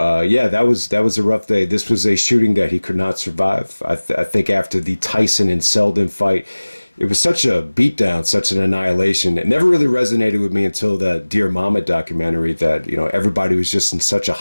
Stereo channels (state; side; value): inverted; both; correlation -1.00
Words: yeah, that was a rough day. This was a shooting that he could not survive. I think after the Tyson and Selden fight, it was such a beatdown, such an annihilation. It never really resonated with me until the Dear Mama documentary, that, you know, everybody was just in such a